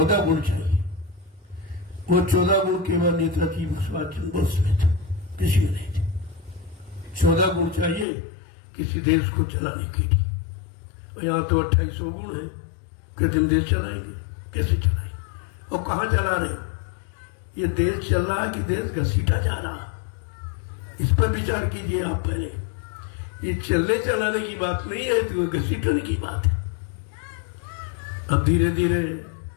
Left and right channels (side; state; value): right; drops out; at 8.1 s